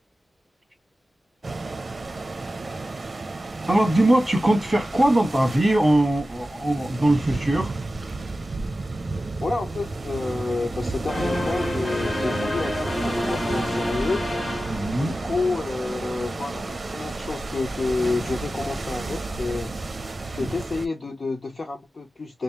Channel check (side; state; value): both; normal; correlation 0.94